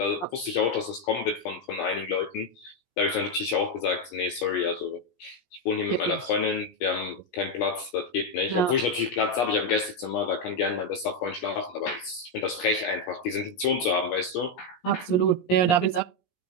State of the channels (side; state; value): right; late; 17 ms